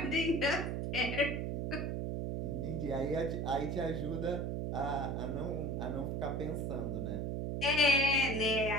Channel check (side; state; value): right; noise; hum, 1 dB below the sound